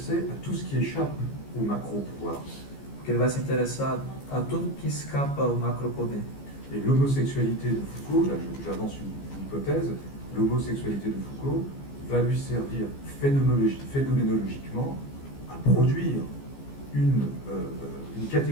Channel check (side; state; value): right; late; 15 ms